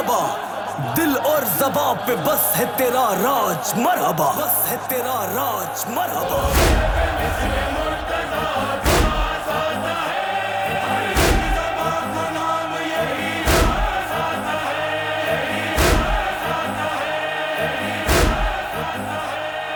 دل اور زباں پہ بس ہے تیرا راج مرحبا، بس ہے تیرا راج مرحبا۔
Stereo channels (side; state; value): both; identical; correlation 1.00